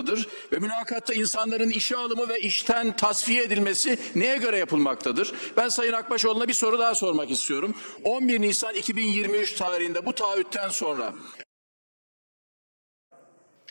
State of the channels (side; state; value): both; inverted; correlation -1.00